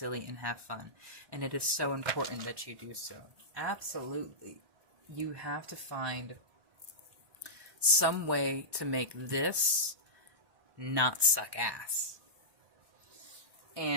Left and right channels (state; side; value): late; left; 1.1 ms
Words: and have fun. And it is so important that you do so. Absolutely. You have to find some way to make this not suck ass.